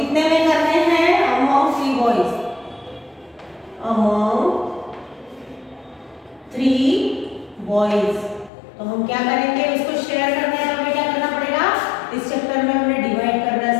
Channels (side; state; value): right; drops out; at 8.5 s